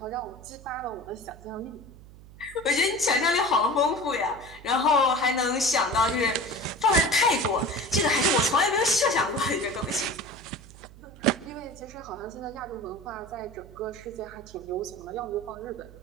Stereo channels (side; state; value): right; noise; hum, 20 dB below the sound